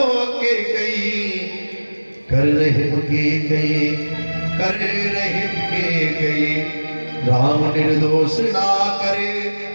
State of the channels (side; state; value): both; inverted; correlation -1.00